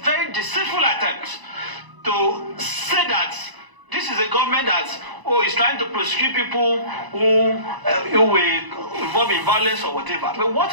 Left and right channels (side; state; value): left; late; 1.0 ms